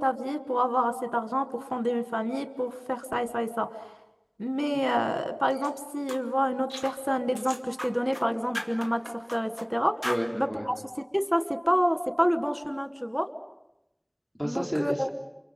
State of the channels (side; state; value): both; identical; correlation 1.00